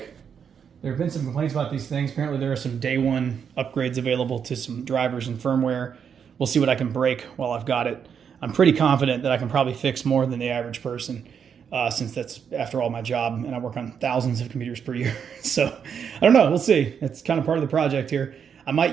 There have been some complaints about these things. Apparently there are some day one upgrades available to some drivers and firmware. We'll see what I can break while I've got it. I'm pretty confident that I can probably fix more than the average person since that's, after all, my job, and I work on thousands of computers per year. So I don't know. We'll see. It's kind of part of the project here. I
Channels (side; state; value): left; quieter; 7.3 dB